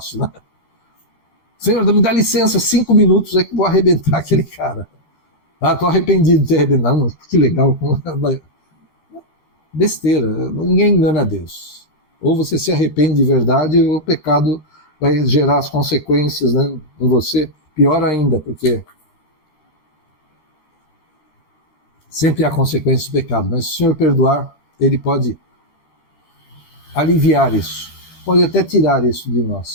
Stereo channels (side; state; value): right; late; 13 ms